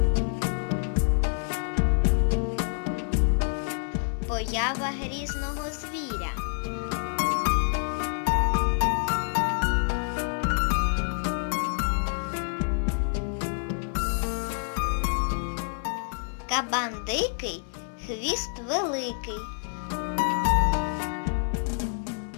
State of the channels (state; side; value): silent; right; 60 dB below the other